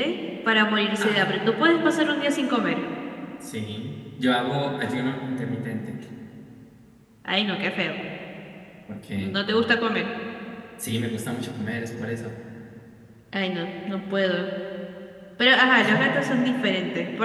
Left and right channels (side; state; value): both; identical; correlation 1.00